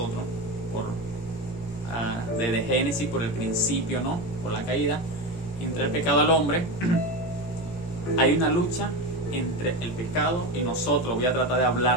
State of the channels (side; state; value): right; late; 17 ms